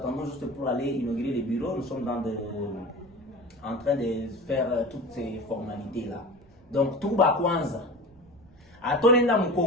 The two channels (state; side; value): noise; right; rumble, 28 dB below the sound